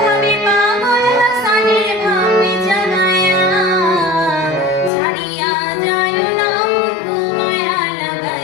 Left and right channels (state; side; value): drops out; right; at 4.9 s